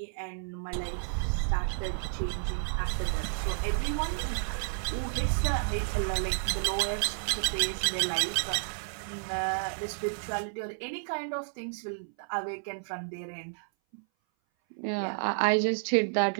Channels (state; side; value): silent; left; 57 dB below the other